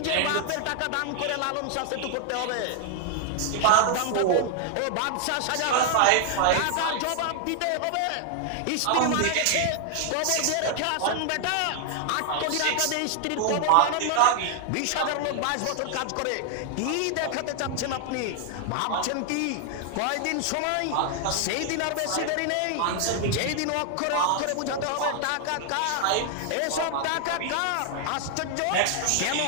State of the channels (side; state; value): both; different; correlation 0.00